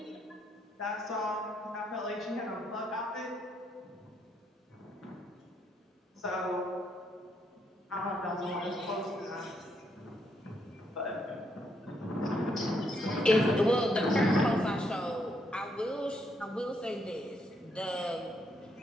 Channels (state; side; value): normal; both; correlation 0.75